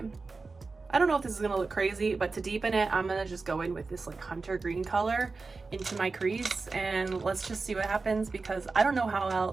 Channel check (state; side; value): quieter; left; 4.1 dB